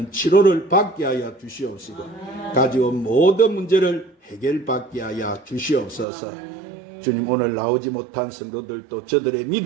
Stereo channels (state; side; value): drops out; left; at 6.1 s